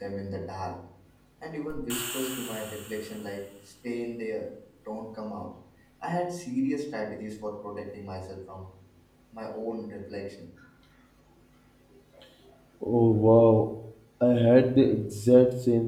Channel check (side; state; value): both; identical; correlation 1.00